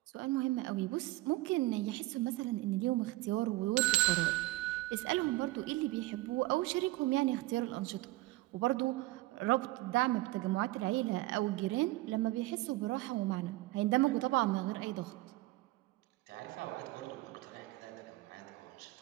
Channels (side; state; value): left; quieter; 19.4 dB